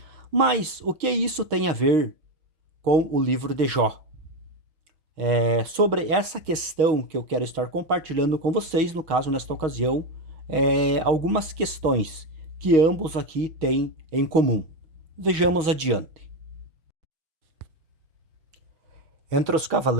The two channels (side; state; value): left; late; 6.3 ms